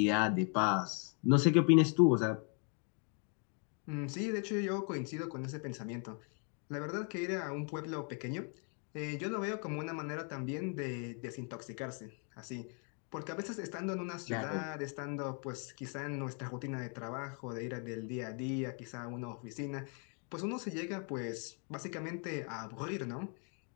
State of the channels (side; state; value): right; quieter; 40.0 dB